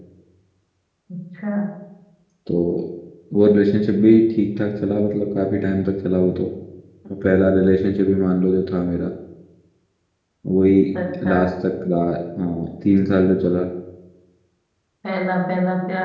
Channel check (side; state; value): both; identical; correlation 1.00